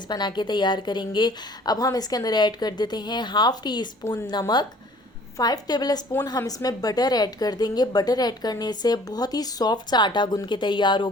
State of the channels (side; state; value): both; normal; correlation 0.53